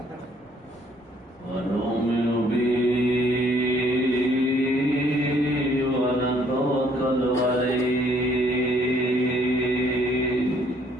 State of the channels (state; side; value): normal; both; correlation 0.64